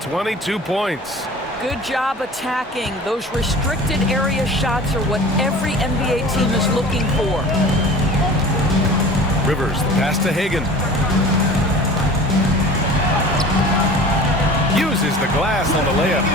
points. Good job attacking. Those restricted area shots are what every NBA team is looking for. Rivers, the pass to Hagan. Uses the glass on the layup.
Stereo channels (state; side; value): normal; both; correlation 0.40